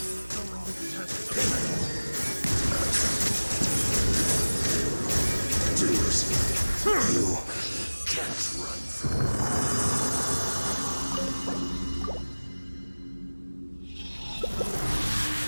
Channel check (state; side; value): inverted; both; correlation -1.00